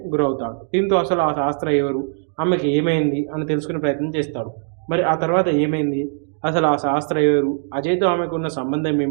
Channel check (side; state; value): left; silent; 65 dB below the other